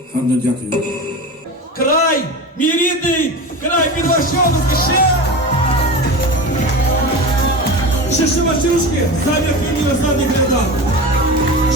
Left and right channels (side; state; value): both; normal; correlation 0.28